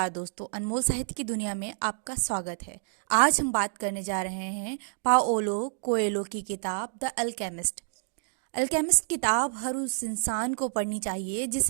दोस्तों, अनमोल साहित्य की दुनिया में आपका स्वागत है। आज हम बात करने जा रहे हैं पाओलो कोएलो की किताब द अल्केमिस्ट। अल्केमिस्ट किताब हर उस इंसान को पढ़नी चाहिए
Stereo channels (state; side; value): silent; left; digital silence